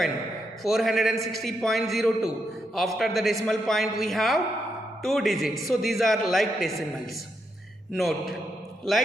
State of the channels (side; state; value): both; normal; correlation 0.82